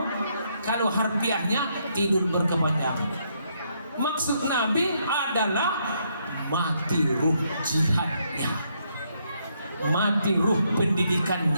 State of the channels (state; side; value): inverted; both; correlation -0.74